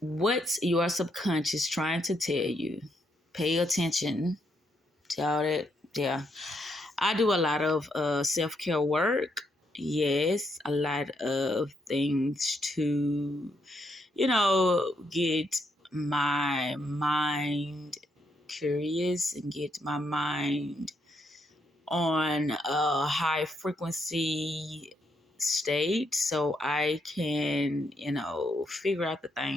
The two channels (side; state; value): both; normal; correlation 0.77